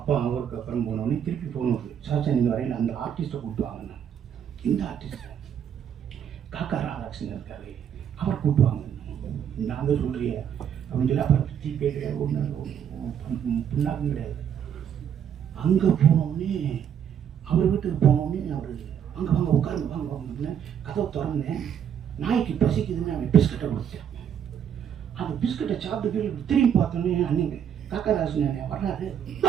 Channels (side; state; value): left; quieter; 8.8 dB